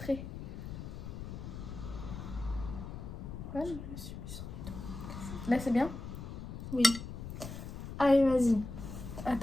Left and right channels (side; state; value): left; noise; rumble, 8 dB below the sound